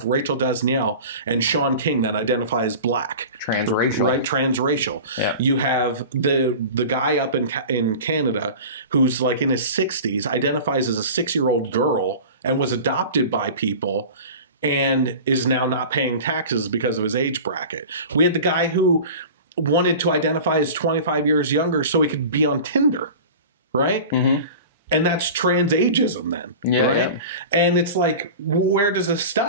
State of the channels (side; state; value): both; inverted; correlation -0.35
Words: Rachel Dasniel and Sean King that identify as black. Transracial. Right? Transracial. You have the guy up in Canada who's like in his 60s, identifies as a 6-year-old girl and was adopted by people and is now not paying taxes because of his age bracket. We had the guy who wanted to identify as 25 years younger so he could be on Tinder, right? And that's trans ageism then, right? And it's like, where does this